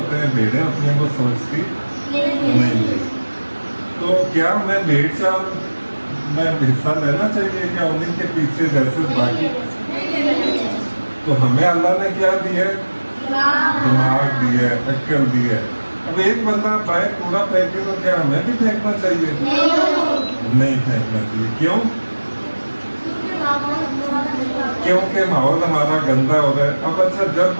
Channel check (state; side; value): inverted; both; correlation -1.00